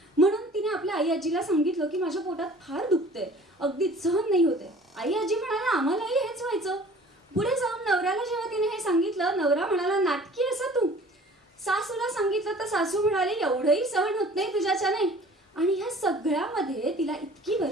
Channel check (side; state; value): both; normal; correlation 0.49